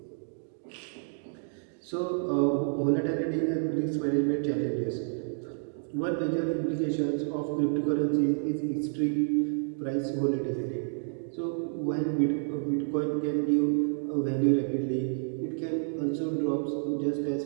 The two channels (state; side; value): silent; left; digital silence